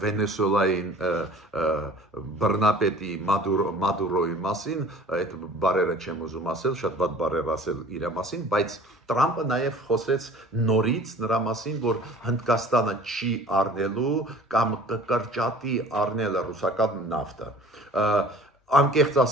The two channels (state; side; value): normal; both; correlation 0.47